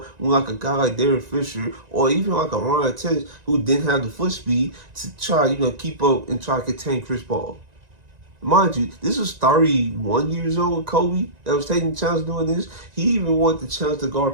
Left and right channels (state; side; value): late; left; 1.9 ms